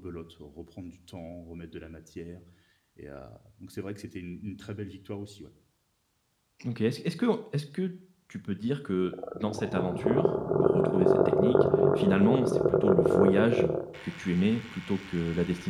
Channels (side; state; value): both; identical; correlation 1.00